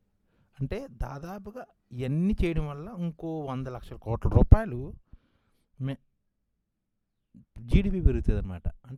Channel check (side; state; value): both; identical; correlation 1.00